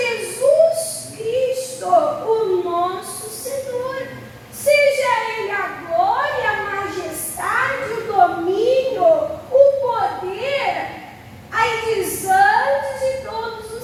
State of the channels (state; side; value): identical; both; correlation 1.00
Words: Cristo, o nosso Senhor, seja Ele a glória, a majestade, o domínio, o poder, aí diz antes de todos os